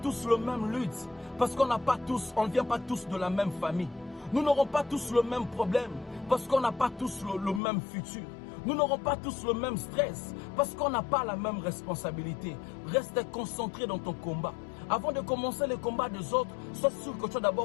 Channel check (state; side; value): drops out; right; at 7.6 s